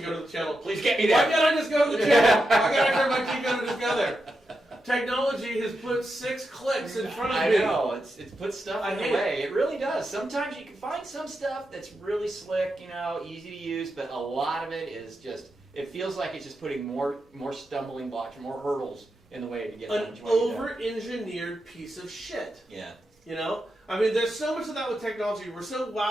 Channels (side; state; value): both; normal; correlation 0.87